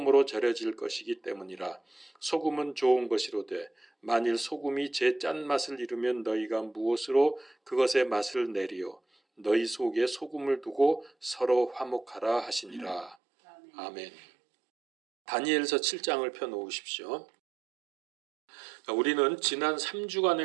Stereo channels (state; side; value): drops out; left; at 13.2 s